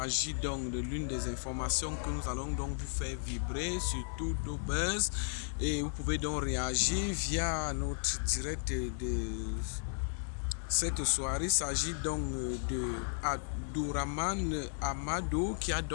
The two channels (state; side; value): silent; right; digital silence